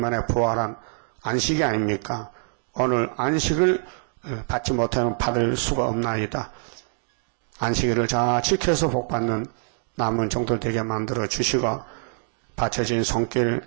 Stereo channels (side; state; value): left; silent; 62 dB below the other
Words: 부활한 안식이 아닙니까? 오늘 안식을 받지 못하면 받을 수가 없나이다. 안식일을 잘 지켜서 복받는 남은 종들 되게 만들어 주시고 바쳐진